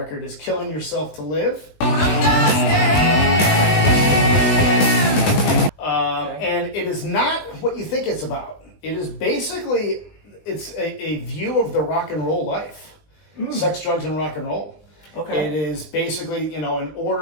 is Killing Yourself to Live. And it is not what you think it's about. It is basically, it's a view of the rock and roll life. Sex, drugs, and rock and roll. Okay. It is basically, in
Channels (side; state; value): right; late; 19 ms